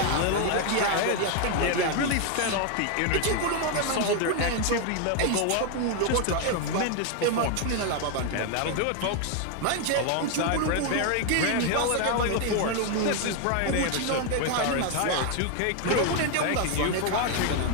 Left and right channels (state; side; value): different; both; correlation 0.01